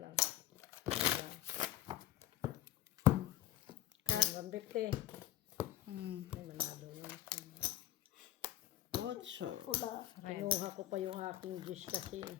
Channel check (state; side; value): quieter; right; 13.6 dB